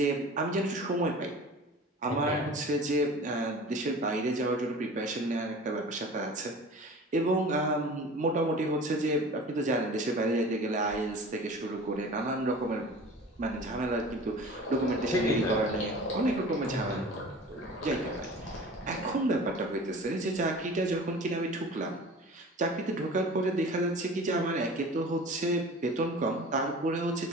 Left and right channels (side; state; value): both; normal; correlation 0.40